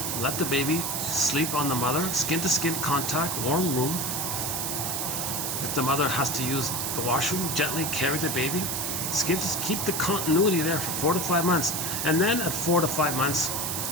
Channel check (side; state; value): right; noise; hiss, 1 dB below the sound